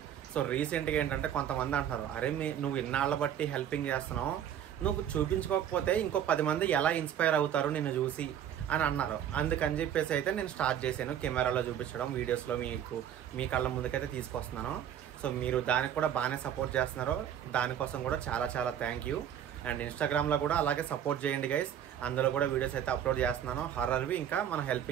సో రీసెంట్గా ఏంటంటే కొంతమంది అంటున్నారు, అరే నువ్వు ఇన్నాళ్ళ బట్టి హెల్పింగ్ చేస్తున్నావు, నువ్వు చూపించుకోకపోతే ఇంకో 10 మంది ఎలా ఇన్స్పైర్ అవుతారు నిన్ను చూసి అని అన్నారు. అందుకని చెప్పేసి అయితే నేను స్టార్ట్ చేశాను కెమెరాలో చూపించడం, వీడియోస్లో మీ కళ్ళ ముందుకైతే తీసుకొస్తున్నాను. సో మీరు దానికి కూడా బాగానే సపోర్ట్ చేస్తున్నారు, దానికోసం కూడా చాలా చాలా థ్యాంక్ యూ. అండ్ ఇన్స్టాగ్రామ్లో కూడా అలాగే సపోర్ట్ చేయండి గైస్. అందులో కూడా వీడియోస్ అయితే అప్లోడ్ చేస్తున్నాను, హర్రర్వి ఇంకా మన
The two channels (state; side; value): quieter; left; 9.9 dB